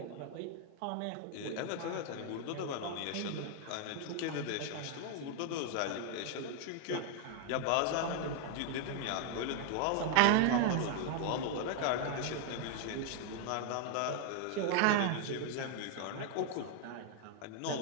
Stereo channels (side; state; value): both; different; correlation 0.00